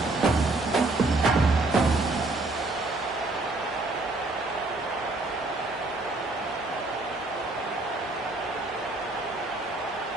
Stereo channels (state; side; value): quieter; left; 3.0 dB